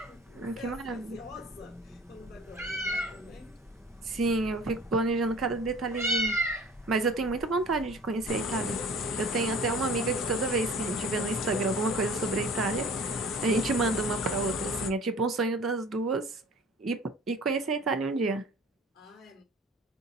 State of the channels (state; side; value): normal; both; correlation 0.45